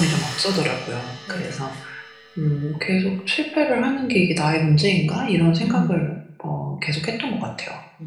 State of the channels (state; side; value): identical; both; correlation 1.00